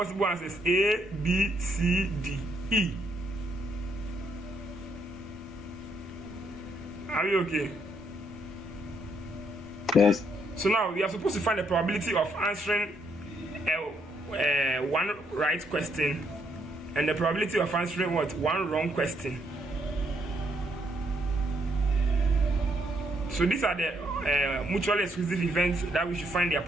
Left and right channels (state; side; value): normal; both; correlation 0.74